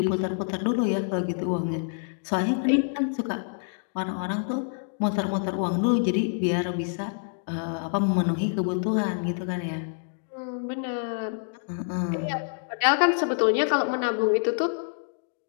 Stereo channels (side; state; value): right; silent; digital silence